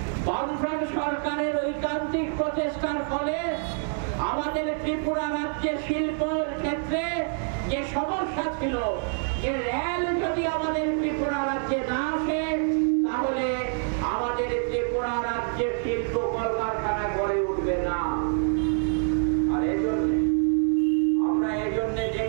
বামফ্রন্ট সরকারের ঐকান্তিক প্রচেষ্টার ফলে আমাদের ত্রিপুরা রাজ্যে শিল্পের ক্ষেত্রে যে সমস্যা ছিল, যে রেল যদি আমাদের ত্রিপুরা রাজ্যে না আসে তাহলে আমাদের ত্রিপুরা রাজ্যে শিল্প কলকারখানা গড়ে উঠবে না। আর আমরা এজন্য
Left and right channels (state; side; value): silent; left; 57 dB below the other